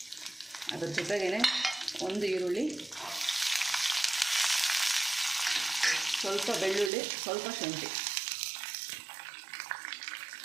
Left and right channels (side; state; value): left; drops out; at 6.9 s